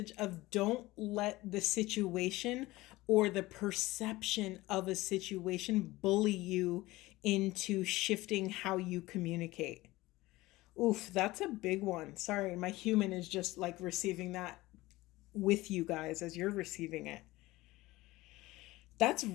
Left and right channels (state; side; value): quieter; right; 19.1 dB